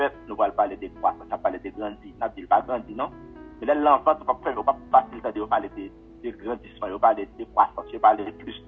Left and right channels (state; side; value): identical; both; correlation 1.00